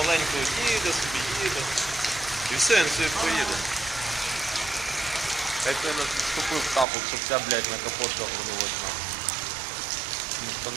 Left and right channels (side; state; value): left; drops out; at 6.9 s